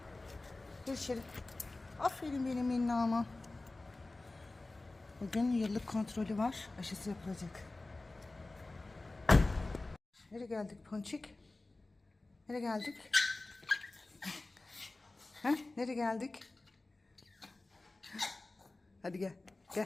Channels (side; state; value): right; quieter; 3.1 dB